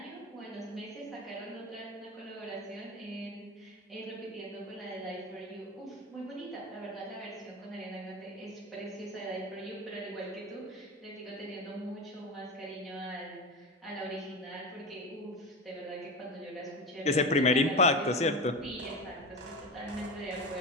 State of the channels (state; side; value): normal; both; correlation 0.25